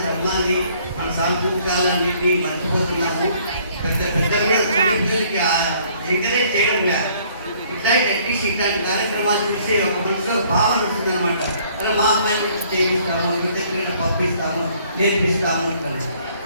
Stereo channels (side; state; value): both; inverted; correlation -0.61